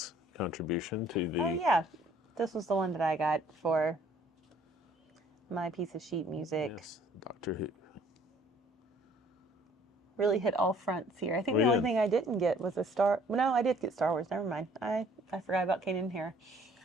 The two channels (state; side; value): normal; both; correlation 0.58